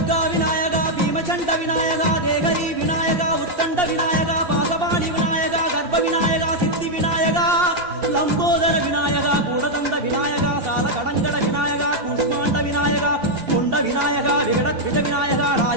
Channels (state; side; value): late; left; 2.7 ms